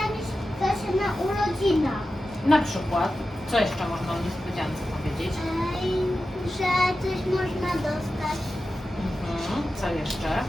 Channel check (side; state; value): both; normal; correlation 0.92